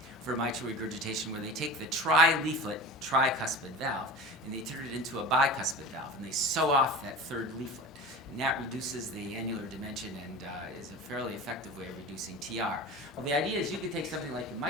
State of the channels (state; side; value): normal; both; correlation 0.34